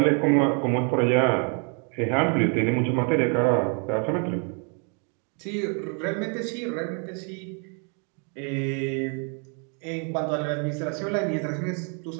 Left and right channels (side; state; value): left; quieter; 39.2 dB